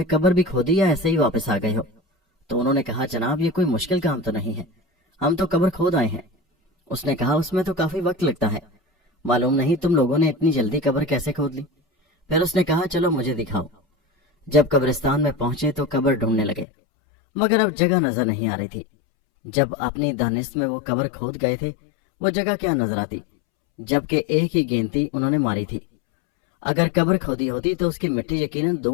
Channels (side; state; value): right; drops out; at 16.7 s